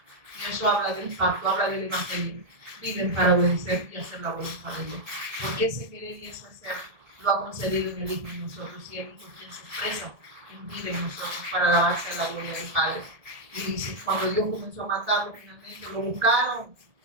eso habla del pacto, habla del Evangelio. Viven para obedecer y hacer la voluntad de Dios. Porque ese querer y ese hacer lo ha concedido en el Hijo en nosotros, y el Hijo quien se expresa en vida en nosotros para alabarse a la gloria del Padre. Y dice, cuando Dios comenzó a matarlo, finalmente lo buscaron.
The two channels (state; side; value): late; left; 1.7 ms